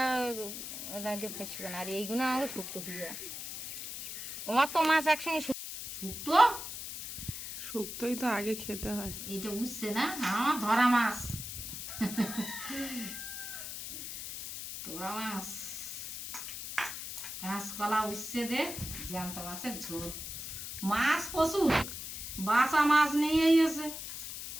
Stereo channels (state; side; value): noise; left; hiss, 8 dB below the sound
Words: ফেসবে না। আর এইগুলো আমাকে শুক্তো ফিরে অত মাছ একসঙ্গে শুক্তো, শুক্তোই তো আগে খেতে হয়। এইটা বুঝছে না, আমার ধরা মাছ। তোরা মাছ কাঁচ কাঁচকলা উচ্ছে দে জ্যান্ত মাছের ঝোল। মাছ প্রচুর, বাসা মাছ নিয়ে এসে